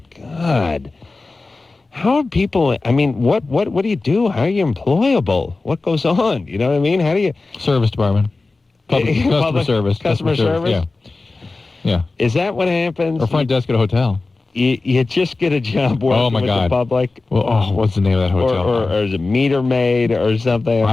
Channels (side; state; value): right; quieter; 3.5 dB